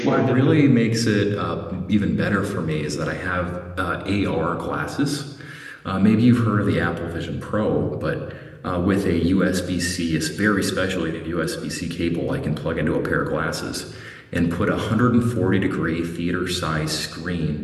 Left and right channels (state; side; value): identical; both; correlation 1.00